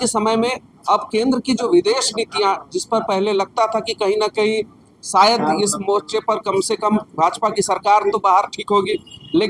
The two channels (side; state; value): both; identical; correlation 1.00